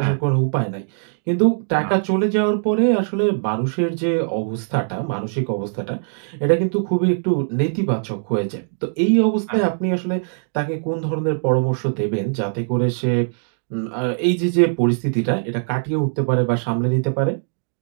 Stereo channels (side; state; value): left; silent; digital silence